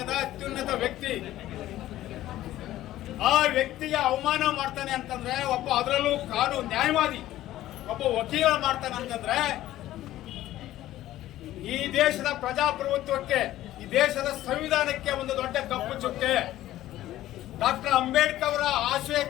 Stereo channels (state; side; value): quieter; right; 14.4 dB